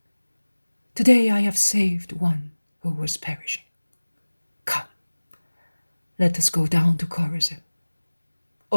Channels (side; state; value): both; inverted; correlation -1.00